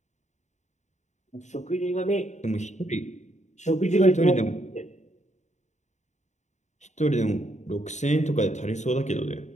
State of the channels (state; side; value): late; right; 0.34 ms